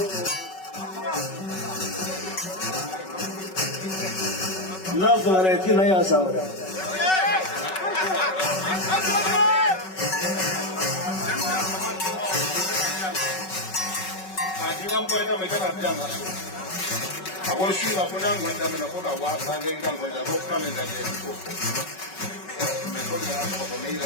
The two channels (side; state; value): right; late; 5.3 ms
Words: na vareti na ya sawara adiam ko ina meka na jama Aku sih nak punya macam mana pun awak bagi kan macam apa ni jadi itu. Mereka ni apa ni